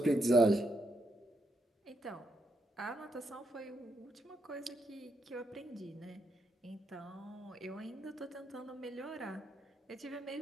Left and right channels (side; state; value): both; normal; correlation 0.80